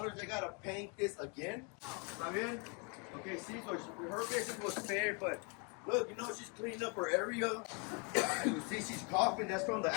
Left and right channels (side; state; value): right; quieter; 35.1 dB